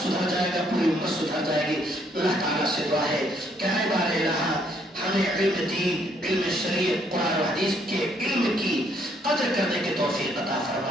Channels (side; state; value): both; normal; correlation 0.69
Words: سدھر جائے گا، پوری امت سدھر جائے گی۔ اللہ تعالیٰ سے دعا ہے کہ اے بار الہ ہمیں علم دین، علم شریعت، قرآن و حدیث کے علم کی قدر کرنے کی توفیق عطا